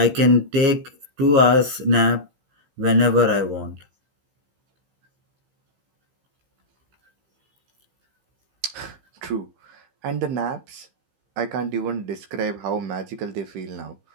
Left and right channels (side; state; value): left; late; 15 ms